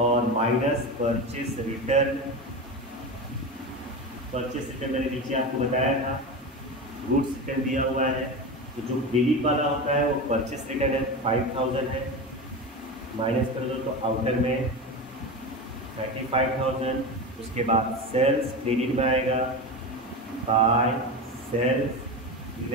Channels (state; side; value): normal; both; correlation 0.23